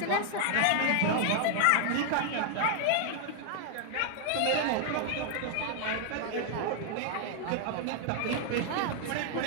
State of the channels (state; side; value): different; both; correlation 0.00